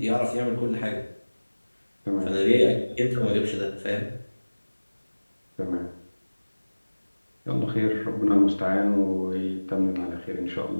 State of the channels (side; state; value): both; inverted; correlation -1.00